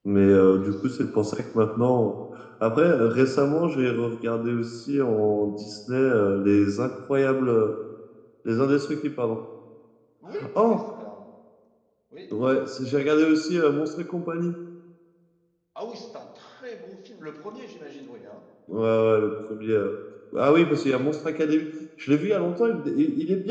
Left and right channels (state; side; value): identical; both; correlation 1.00